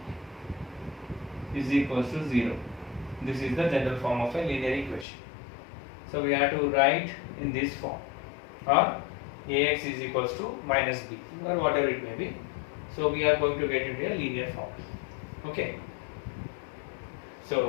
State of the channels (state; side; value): drops out; right; at 5.1 s